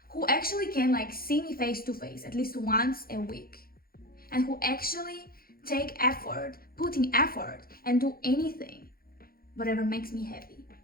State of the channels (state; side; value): late; right; 0.43 ms